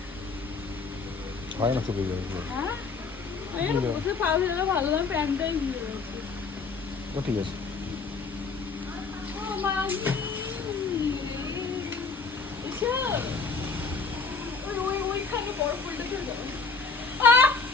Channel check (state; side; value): quieter; right; 4.6 dB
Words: হয় না, চলে যাবে। হ্যাঁ, বসে পাওয়া গেলে ভালো, না প্যান্টটাই ভিজে গেছে। ও ঠিক আছে। ওইখানে বড় ফুলটা চলে যাবে।